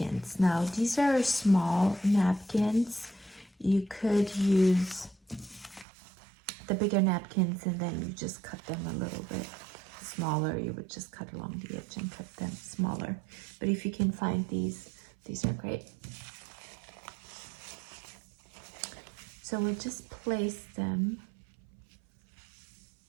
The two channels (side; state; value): left; drops out; at 5.9 s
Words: Now these are small napkins. You could use the bigger napkins and then you just cut them a little bit smaller. You would just cut along the edge and cut them smaller. But if you can find these are great. So we'll just place them